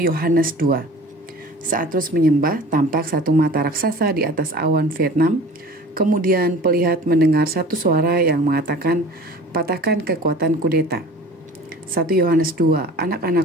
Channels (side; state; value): both; normal; correlation 0.43